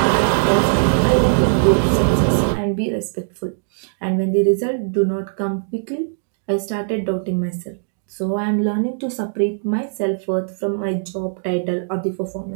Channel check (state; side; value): silent; left; digital silence